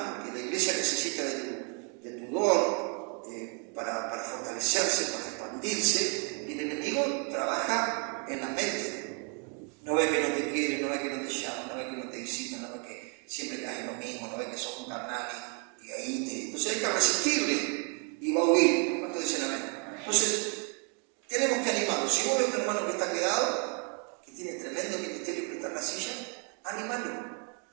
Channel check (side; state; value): left; quieter; 37.7 dB